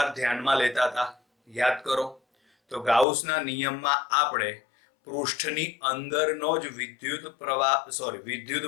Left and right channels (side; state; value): right; drops out; at 3.1 s